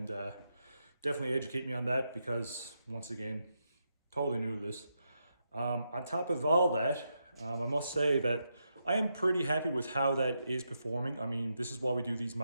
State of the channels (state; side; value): inverted; both; correlation -0.83